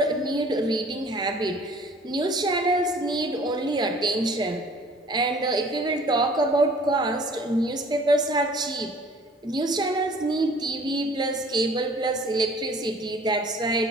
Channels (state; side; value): normal; both; correlation 0.52